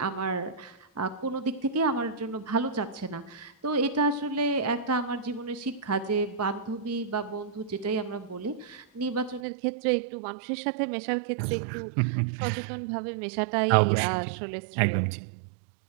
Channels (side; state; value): left; drops out; at 9.4 s